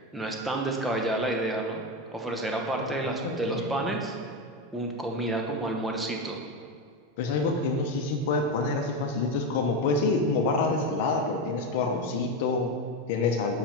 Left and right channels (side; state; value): both; normal; correlation 0.15